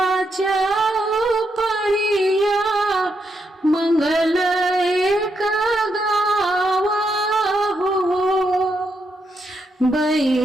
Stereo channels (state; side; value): normal; both; correlation 0.81